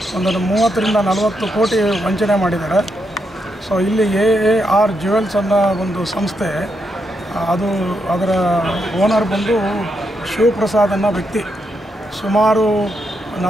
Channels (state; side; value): normal; both; correlation 0.81